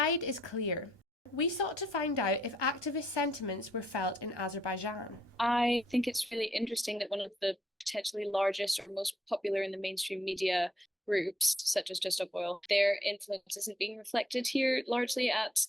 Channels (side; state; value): both; normal; correlation 0.71